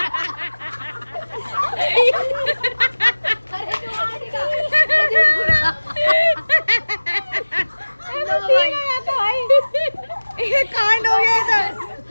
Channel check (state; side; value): inverted; both; correlation -1.00